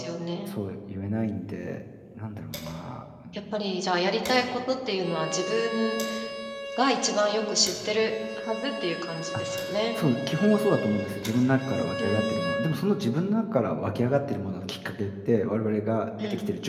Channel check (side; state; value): both; identical; correlation 1.00